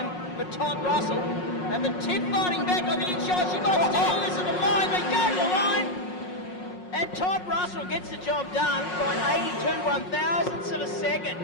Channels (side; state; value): right; late; 5.5 ms